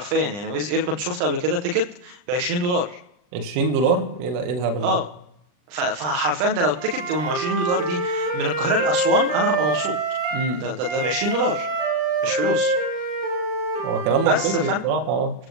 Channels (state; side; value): late; left; 39 ms